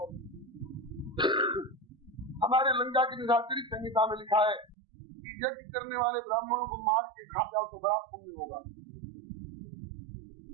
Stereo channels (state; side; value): drops out; left; at 4.8 s